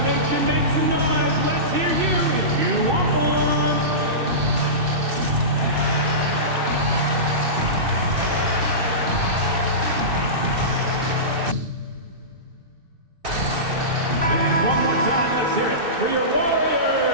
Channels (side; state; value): left; late; 2.6 ms